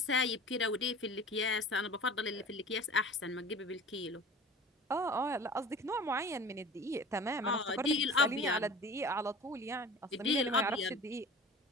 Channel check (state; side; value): normal; both; correlation 0.41